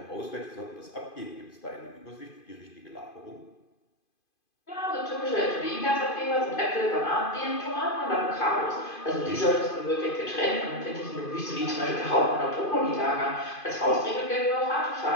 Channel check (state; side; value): late; right; 2.5 ms